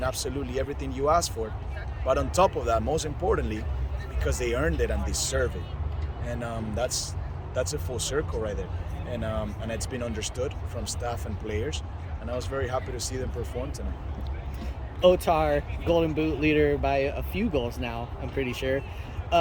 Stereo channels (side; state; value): both; identical; correlation 1.00